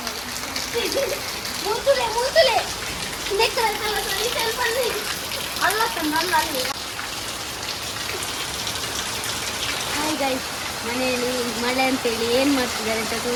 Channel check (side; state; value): both; identical; correlation 1.00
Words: ಮುಂತುಲೆ ಮುಂತುಲೆ ಅಲ್ಲ ತಂದಲ್ಲ ಅಲ್ಲಿ. ಹಾಯ್ ಗಾಯ್ಸ್, ಮನೆಯಲ್ಲಿ ಮಳೆ ಅಂತೇಳಿ ಏನು ಮಾಡ್ತಿದ್ದಾರೆ ಅಂತ